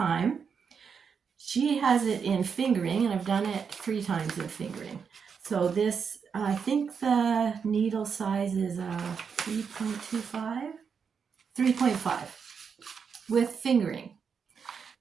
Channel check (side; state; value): left; quieter; 6.3 dB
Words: she has it in fingering, and I've done it 3 times in fingering. So this, I think the needle size is 3.25, 3.5 with fingering.